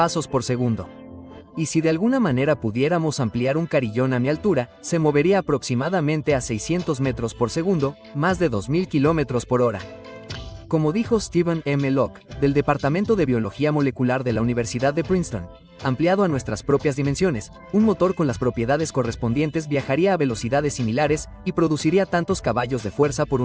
por segundo. Y si de alguna manera pudiéramos ampliar un carillón a mi altura, se movería aproximadamente a 600 metros por segundo, más de 2000 kilómetros por hora. Como dijo Stephen M. Locke, del Departamento de Biología Molecular de la Universidad de Princeton, ampliado a nuestras propias dimensiones, un motor con las propiedades correspondientes viajaría a velocidades similares y produciría tantos caballos de fuerza por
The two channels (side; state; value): both; identical; correlation 1.00